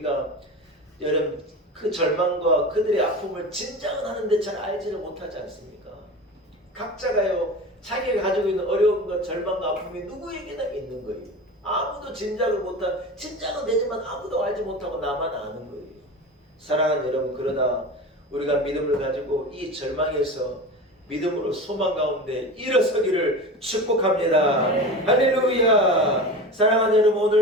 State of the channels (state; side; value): normal; both; correlation 0.30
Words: 여러분 그 절망과 그들의 아픔을 짐작은 하는데 잘 알지를 못하지 않습니까? 각자가요 자기가 가지고 있는 어려움과 절망과 아픔이 누구에게나 있는 거예요. 아무도 짐작은 되지만 아무도 알지 못하고 나만 아는 거예요. 사랑하는 여러분, 그러나 우리가 믿음을 가지고 이 절망에서 믿음으로 소망 가운데 일어서기를 축복합니다. 할렐루야. 사랑하는 여러분,